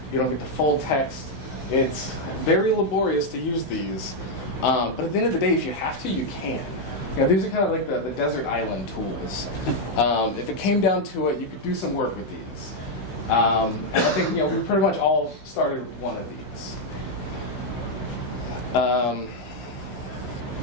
You don't get the full text. It's very laborious to use these. But at the end of the day, if you have to, you can. You know, these are kind of like the desert island tools. If it came down to it, you could do some work with these. And I think we pretty much all started with one of these. And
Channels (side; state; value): right; late; 16 ms